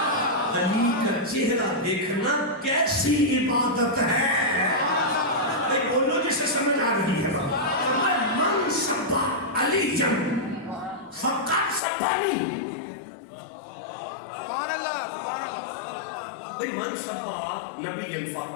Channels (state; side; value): drops out; right; at 11.8 s